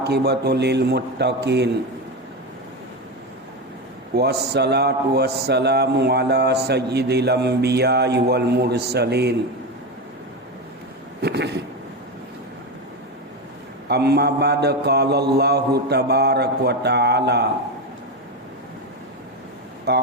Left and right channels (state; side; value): normal; both; correlation 0.16